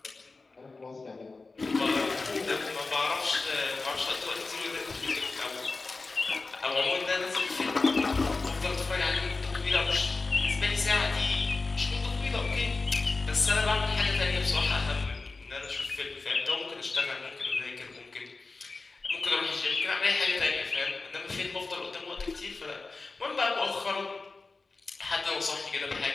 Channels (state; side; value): quieter; right; 3.8 dB